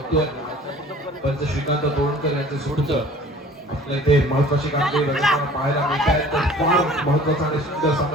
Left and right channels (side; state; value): both; normal; correlation 0.48